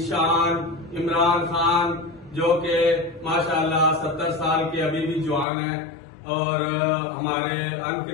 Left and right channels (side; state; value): right; drops out; at 5.5 s